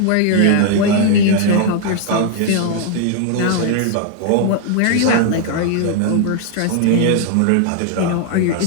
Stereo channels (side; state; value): both; different; correlation 0.00